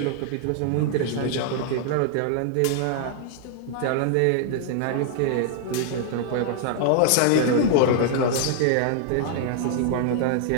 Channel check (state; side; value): different; both; correlation -0.01